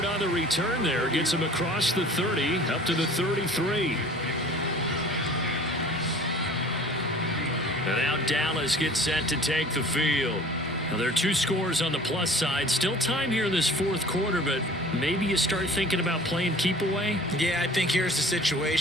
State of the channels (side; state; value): both; normal; correlation 0.47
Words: on the return there. Gets him across the 30, up to the 33. And now Dallas gets set to take the field. Now there are 2 scores on the plus side. Still time here in this fourth quarter, but maybe you start thinking about playing keep away? Yeah, I think here's the